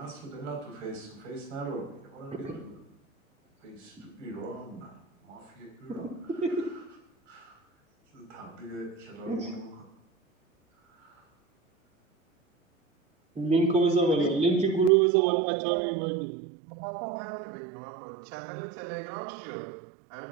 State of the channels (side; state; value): left; drops out; at 14.9 s